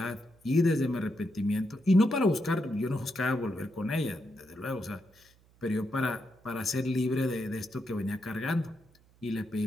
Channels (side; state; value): right; noise; hum, 30 dB below the sound